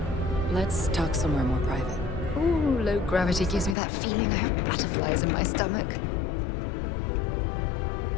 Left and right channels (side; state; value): right; drops out; at 3.8 s